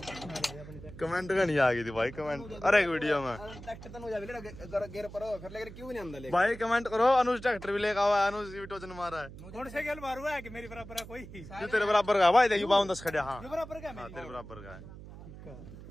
कमेंट का नहीं आ गई थी भाई कमेंट। अरे एक वीडियो में ट्रैक्टर तो मुझे गेर पर फिर लेकर क्यों नहीं अंदर ले भाई कमेंट करो। अनुज ट्रैक्टर भी लेकर आवा, अनुज भी टोचन मारा है। कौन से गेल मारू है कि मेरी बराबर है कोई? तू तेरे बराबर का भाई देखियो 52 खड़े। हाँ बराबर का हाँ तेरे बराबर का है।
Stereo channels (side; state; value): right; noise; hum, 15 dB below the sound